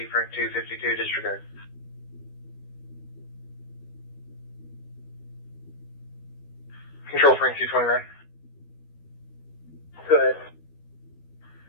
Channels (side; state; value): right; late; 12 ms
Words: Frank 252, disregard. Control Frank 229. Go ahead.